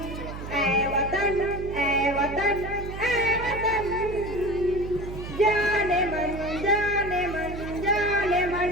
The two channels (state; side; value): noise; right; hum, 9 dB below the sound